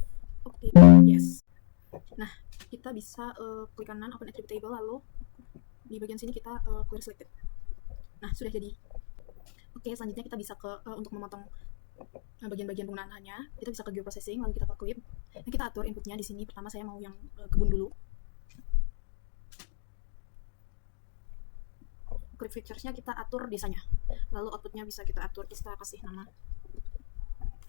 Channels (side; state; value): right; silent; 58 dB below the other